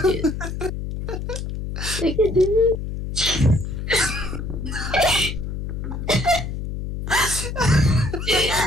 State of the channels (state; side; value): noise; left; hum, 5 dB below the sound